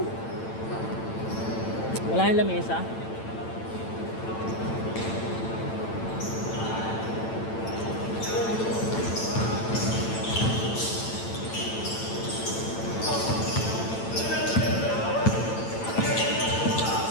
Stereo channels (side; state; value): right; late; 9.0 ms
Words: Wala yung lamesa.